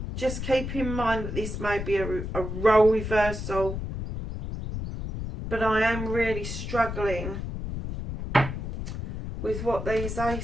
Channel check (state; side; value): noise; left; rumble, 5 dB below the sound